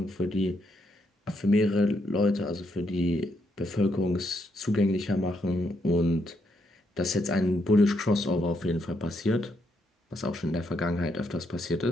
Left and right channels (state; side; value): normal; both; correlation 0.77